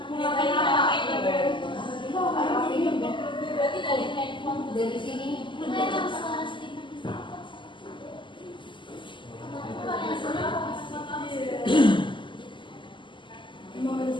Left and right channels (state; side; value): late; right; 0.24 ms